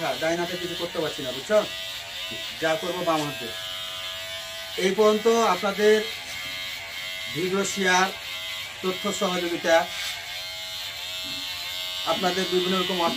ডাইন হাতে কিছু করতে পারছি না, বুঝছো? যা করবো বাম হাতে। এই পর্যন্ত আপনাদের ভিডিও শেয়ার, তথ্য সহযোগিতা, আপনাদের বিভিন্ন রকম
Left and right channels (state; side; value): identical; both; correlation 1.00